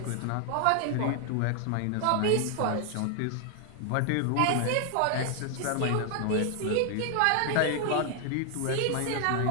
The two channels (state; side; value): different; both; correlation 0.00